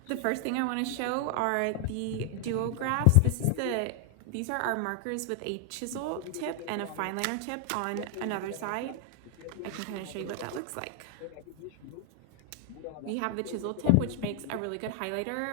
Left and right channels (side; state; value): both; different; correlation 0.00